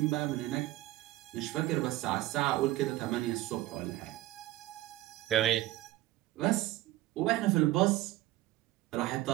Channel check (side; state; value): left; quieter; 16.5 dB